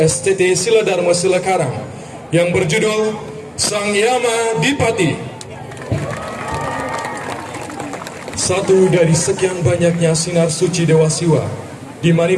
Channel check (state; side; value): identical; both; correlation 1.00